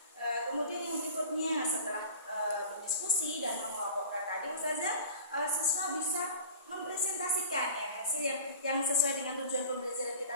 kemudian yang berikutnya setelah berdiskusi dan mengelompokkan tadi, Ustazah, siswa bisa mempresentasikan ya hasil yang sesuai dengan tujuan pembelajaran kita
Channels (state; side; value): inverted; both; correlation -0.40